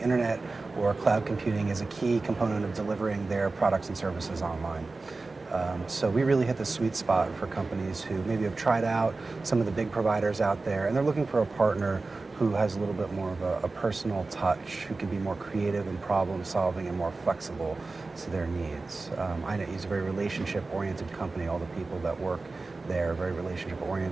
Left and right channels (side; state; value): left; quieter; 3.6 dB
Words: or cloud computing as a key component of delivering their products and services online. So we really hit the sweet spot for companies who maybe have tried out some of the big providers out there, and they're looking for a partner who has a little bit more of a personal touch, who can be more creative and problem solving and more flexible to their needs. INetU is a very relationship-oriented company. All the people that work there are very